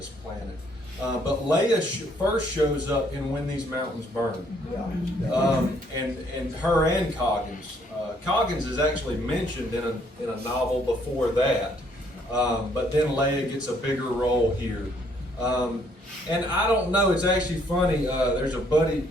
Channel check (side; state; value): both; normal; correlation 0.66